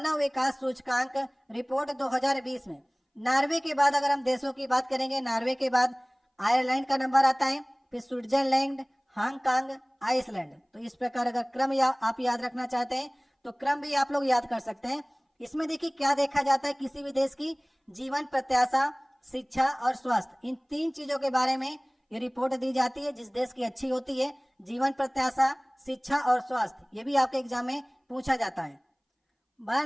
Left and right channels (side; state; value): both; identical; correlation 1.00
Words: विकास सूचकांक रिपोर्ट 2020 में। नॉर्वे के बाद अगर हम देशों की बात करेंगे, नॉर्वे के बाद आयरलैंड का नंबर आता है, फिर स्विट्जरलैंड, हांगकांग, आइसलैंड। तो इस प्रकार अगर क्रम आप याद रखना चाहते हैं तो क्रम भी आप लोग याद कर सकते हैं। इसमें देखिए क्या देखा जाता है, किसी भी देश की जीवन प्रत्याशा, शिक्षा और स्वास्थ्य, इन 3 चीजों के बारे में ये रिपोर्ट दी जाती है। जिस देश की अच्छी होती है, जीवन प्रत्याशा, शिक्षा और स्वास्थ्य, ये भी आपके एग्जाम में पूछा जाता है।